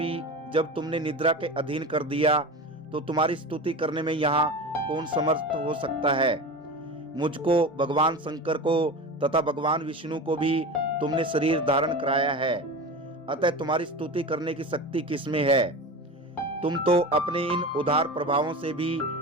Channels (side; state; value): both; normal; correlation 0.28